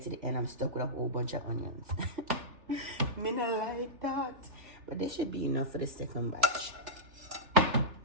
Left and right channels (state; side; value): late; left; 3.4 ms